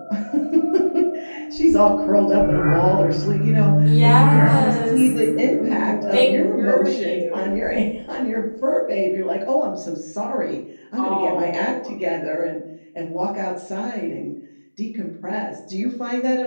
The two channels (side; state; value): both; inverted; correlation -1.00